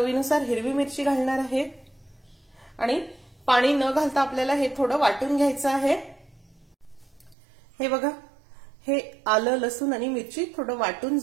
हिरवी मिरची घालणार आहे आणि पाणी न घालता आपल्याला हे थोडं वाटून घ्यायचं आहे. हे बघा हे आलं लसूण आणि मिरची थोडं वाटून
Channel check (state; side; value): drops out; left; at 7.4 s